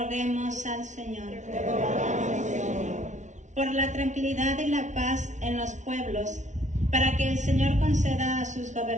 al Señor. Por la tranquilidad y la paz en los pueblos, para que el Señor conceda a sus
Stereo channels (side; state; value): left; late; 0.35 ms